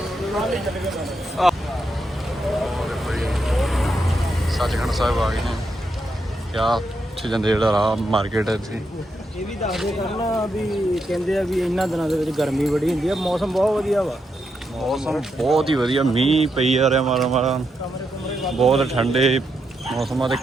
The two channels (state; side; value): normal; both; correlation 0.82